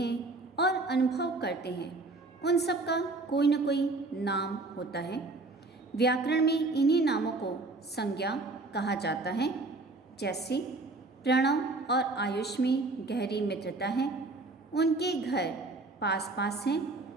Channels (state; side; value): quieter; left; 3.2 dB